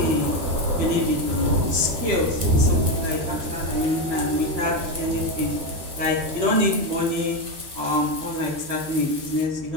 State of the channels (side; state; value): left; late; 12 ms